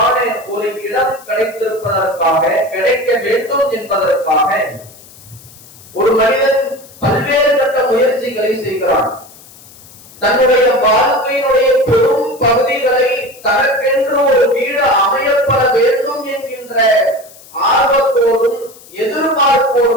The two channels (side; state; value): left; noise; hiss, 22 dB below the sound